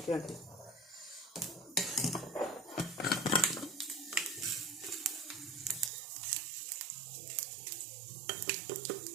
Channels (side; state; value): left; drops out; at 5.9 s